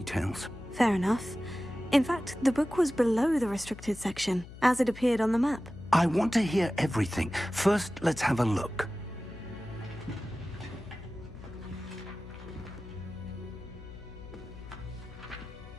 Fair enough. In fact, the book was below the restricted section, as it appeared on the map. I want to hear everything. First, let's have a look.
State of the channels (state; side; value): noise; left; hum, 15 dB below the sound